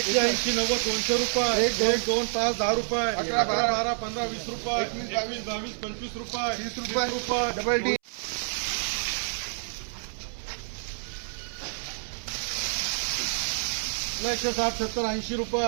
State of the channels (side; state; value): left; silent; 59 dB below the other